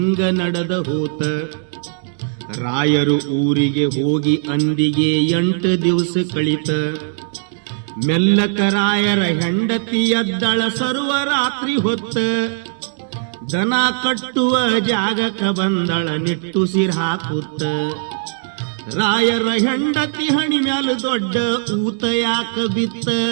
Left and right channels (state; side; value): silent; left; digital silence